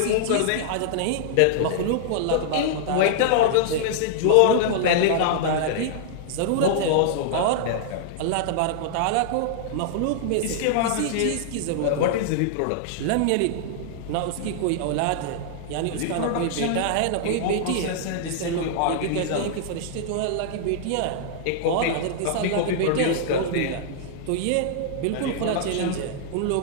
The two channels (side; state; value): both; different; correlation -0.01